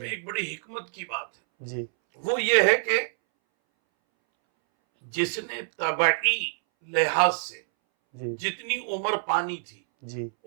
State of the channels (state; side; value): silent; left; 61 dB below the other